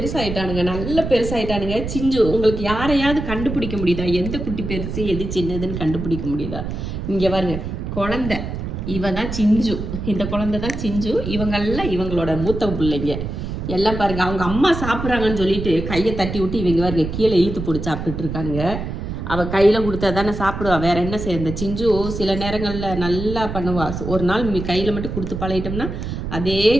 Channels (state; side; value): noise; right; rumble, 6 dB below the sound